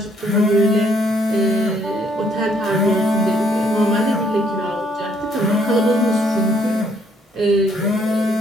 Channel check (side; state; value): both; normal; correlation 0.68